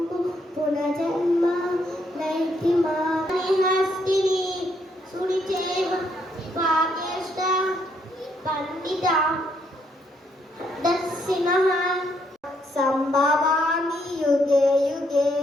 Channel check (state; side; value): normal; both; correlation 0.73